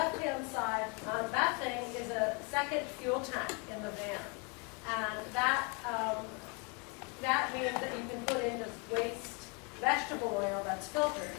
side, that thing is a second fuel tank in the van. And that means that you can put in just waste vegetable oil that's filtered.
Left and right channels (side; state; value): right; quieter; 33.3 dB